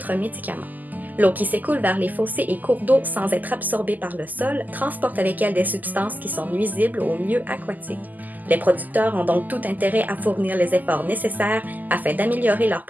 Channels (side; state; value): left; late; 0.083 ms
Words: médicaments. L'eau qui s'écoule vers les fossés et cours d'eau sans être absorbée par le sol transporte avec elle des substances qui sont nuisibles aux milieux aquatiques. Les producteurs ont donc tout intérêt à fournir les efforts nécessaires afin d'améliorer leurs